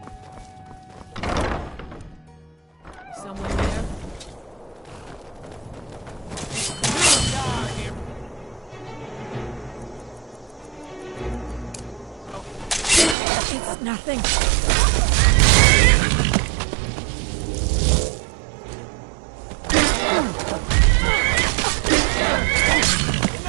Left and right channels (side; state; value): left; drops out; at 13.2 s